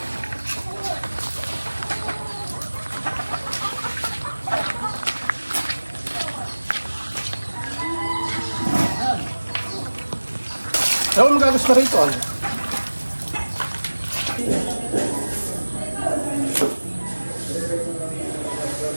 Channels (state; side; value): inverted; both; correlation -1.00